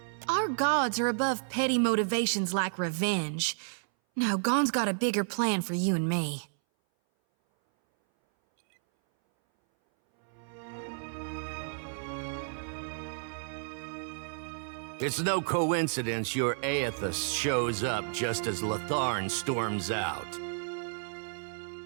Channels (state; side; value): silent; left; 57 dB below the other